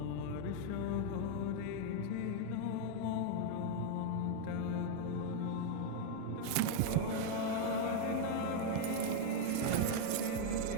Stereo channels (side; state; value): both; different; correlation 0.00